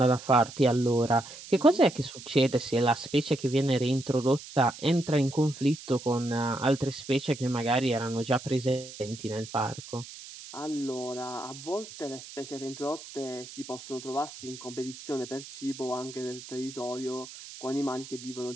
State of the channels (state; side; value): noise; right; hiss, 15 dB below the sound